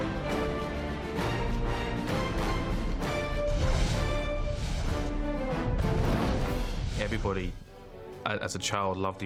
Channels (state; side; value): identical; both; correlation 1.00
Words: Everybody, as a child, loved